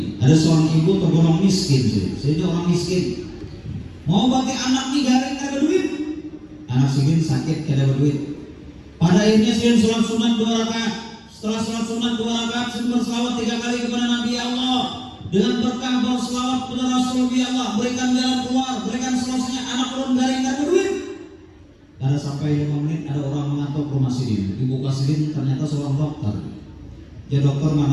Ada seorang ibu tergolong miskin, jadi orang miskin mau bagi anak nih garing ada duit, anak segini sakit kada ada duit. Pada akhirnya segini sholat sunat 2 rakaat. Setelah sholat sunat 2 rakaat, segini berselawat 3 kali kepada Nabi Allah. Dengan berkah berselawat kepada Rasul Allah, berikan jalan keluar, berikan solusinya, anak turun garing ada duit. Kada sampai 5 menit ada orang mengantuk rumah sidin. Dibuka sidin ternyata seorang dokter. Ya dokter,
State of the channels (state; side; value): identical; both; correlation 1.00